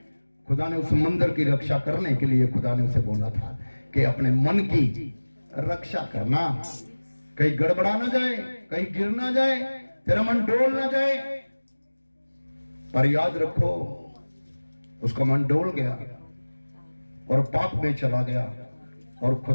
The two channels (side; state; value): both; inverted; correlation -1.00